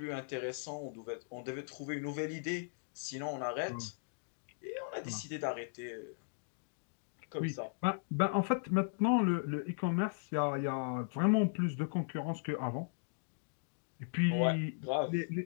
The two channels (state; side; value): silent; right; digital silence